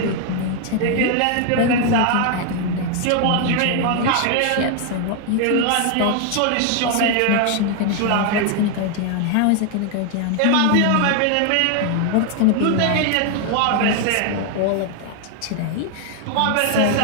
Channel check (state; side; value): different; both; correlation 0.00